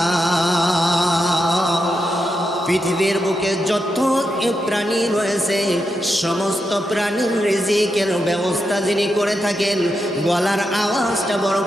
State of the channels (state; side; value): normal; both; correlation 0.85